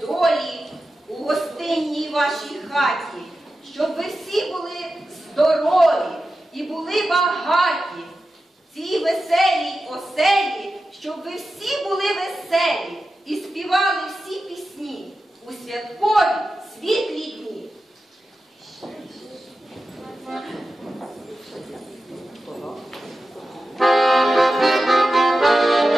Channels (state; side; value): normal; both; correlation 0.92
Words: долі у гостинній вашій хаті, щоб ви всі були здорові і були багаті. В цій веселій оселі, щоб ви всі були веселі і співали всі пісні у святкові